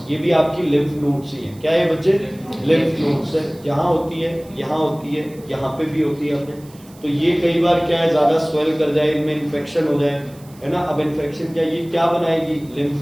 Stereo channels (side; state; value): right; noise; hiss, 25 dB below the sound